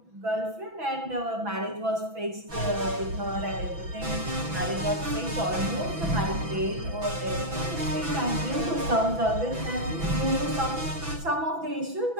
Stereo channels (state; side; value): late; left; 6.0 ms